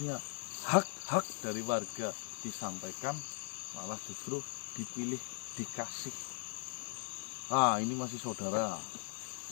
hak-hak dari warga disampaikan, malah justru dipilih, dikasih. Ah, ini masih saudara,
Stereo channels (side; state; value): right; silent; 52 dB below the other